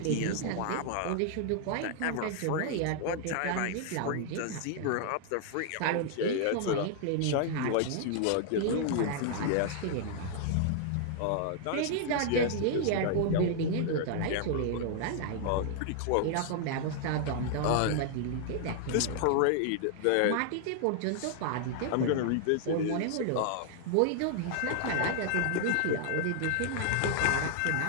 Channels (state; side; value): different; both; correlation 0.00